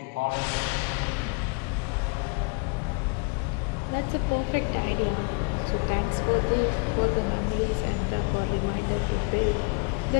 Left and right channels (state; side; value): quieter; right; 33.4 dB